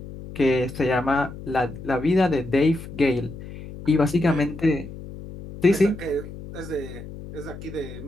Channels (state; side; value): noise; left; hum, 13 dB below the sound